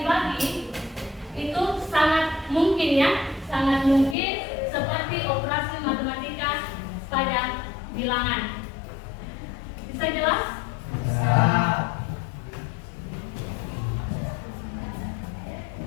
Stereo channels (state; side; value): drops out; right; at 4.2 s